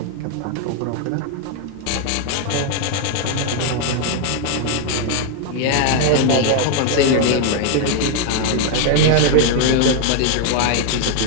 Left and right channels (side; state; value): both; different; correlation 0.00